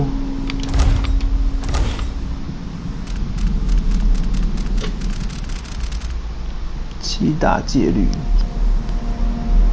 7大戒律。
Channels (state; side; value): identical; both; correlation 1.00